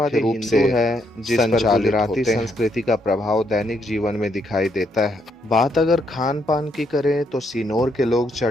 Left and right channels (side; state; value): both; normal; correlation 0.75